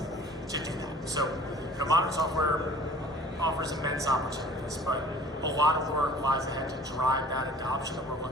to do that? So modern software offers immense opportunities, but a lot of work lies ahead to drive that adoption that we're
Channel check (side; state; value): both; normal; correlation 0.48